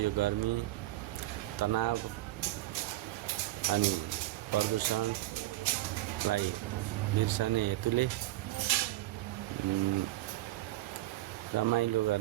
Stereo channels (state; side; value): quieter; left; 17.2 dB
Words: गर्मी, तनाव अनि प्रदूषणलाई बिर्सने हेतुले रमाइलो